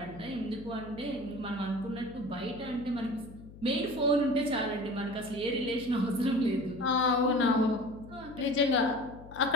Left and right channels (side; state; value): left; noise; hum, 18 dB below the sound